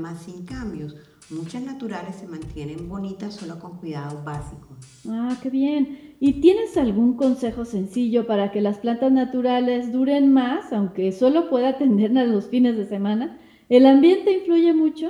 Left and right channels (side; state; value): both; identical; correlation 1.00